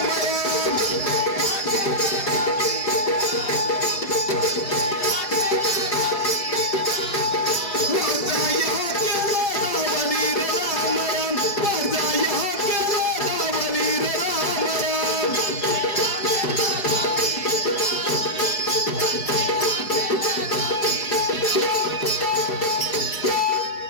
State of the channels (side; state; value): right; late; 4.7 ms